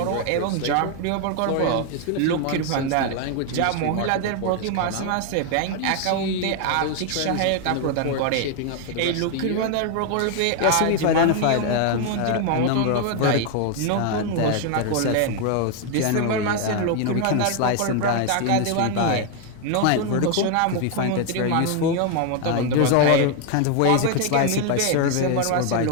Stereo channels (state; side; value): different; both; correlation 0.01